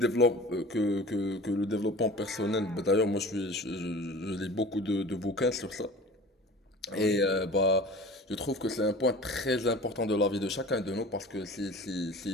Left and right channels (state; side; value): normal; both; correlation 0.41